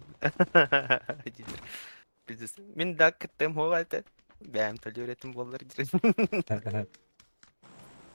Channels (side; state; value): both; inverted; correlation -1.00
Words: Biz min da kıttım hoğaltı. Benim talı üretim bolları dirin.